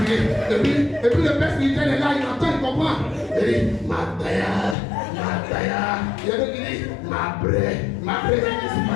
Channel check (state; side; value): drops out; right; at 4.8 s